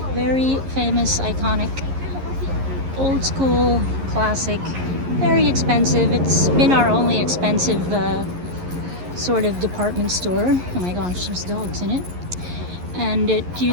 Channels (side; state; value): left; late; 11 ms